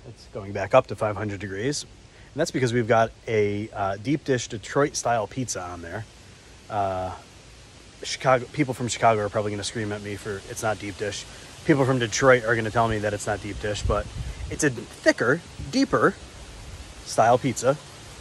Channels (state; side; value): identical; both; correlation 1.00